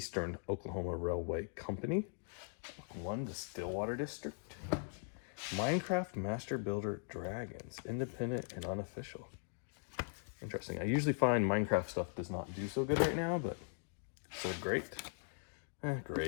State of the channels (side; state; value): right; silent; 51 dB below the other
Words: Oklahoma Railway Company. Book 1, the Stillwater District. Minecraft Master Builder Dragons. Independent and unofficial. Interesting. I usually find Minecraft stuff does not do so good right now, but sold great.